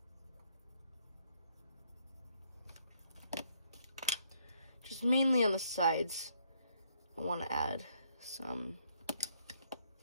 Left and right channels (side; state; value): both; inverted; correlation -0.71